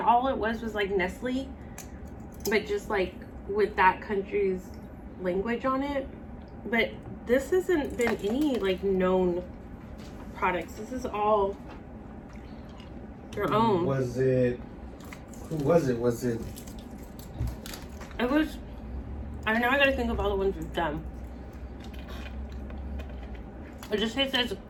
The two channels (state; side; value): identical; both; correlation 1.00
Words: it was like Nestle, but just like with that country's language on it. But this hasn't been any like known products. This is all your own. Who was it? It was. I don't know. I gotta think of all the ones we've done. It just tastes like